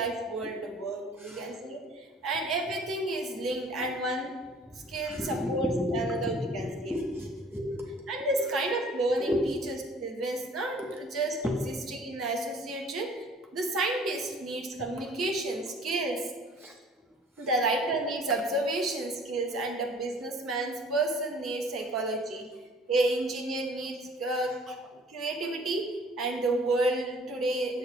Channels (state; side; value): normal; both; correlation 0.53